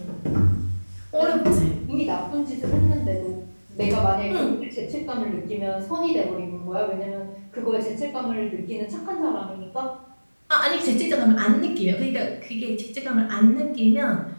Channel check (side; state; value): both; inverted; correlation -1.00